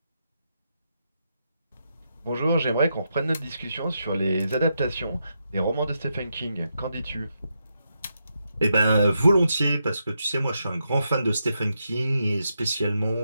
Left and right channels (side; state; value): both; inverted; correlation -0.83